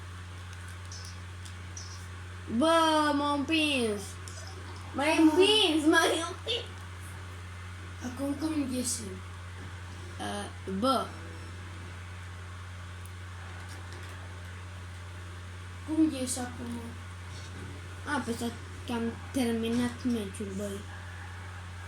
Bă, m-am împins! M-ai împins, m-ai împins! Acum cum ieșim? Bă, Cum ieși acum? apăsat că am terminat meciul, băi.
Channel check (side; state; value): both; identical; correlation 1.00